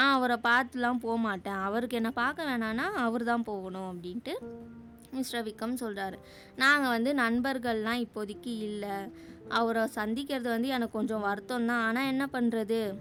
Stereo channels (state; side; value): identical; both; correlation 1.00